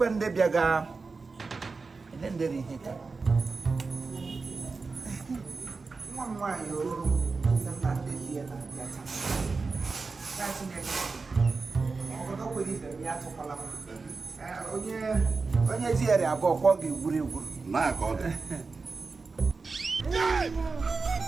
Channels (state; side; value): quieter; left; 4.2 dB